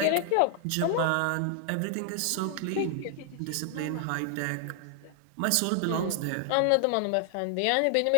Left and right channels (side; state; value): both; different; correlation 0.00